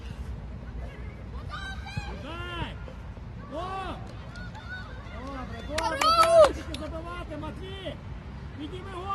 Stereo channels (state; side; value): identical; both; correlation 1.00